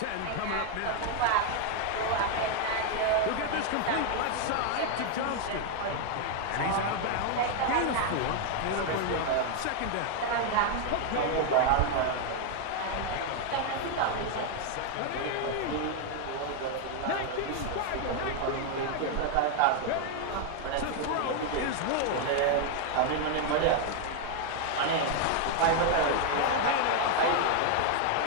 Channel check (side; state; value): both; different; correlation 0.00